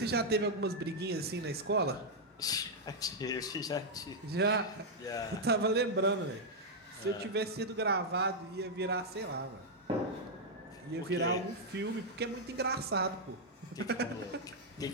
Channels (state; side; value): normal; both; correlation -0.03